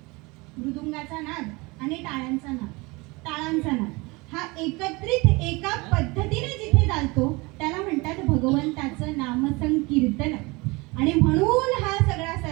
मृदुंगाचा नाद आणि टाळ्यांचा नाद, ताळांचा नाद हा एकत्रित एका पद्धतीने जिथे चालतो त्याला म्हणतात भगवंताचं नामसंकीर्तन. आणि म्हणून हा सगळा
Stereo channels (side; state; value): left; quieter; 25.0 dB